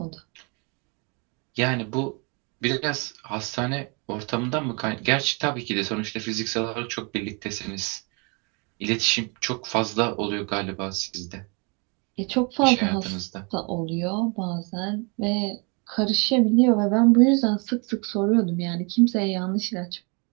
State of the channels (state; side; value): quieter; left; 32.5 dB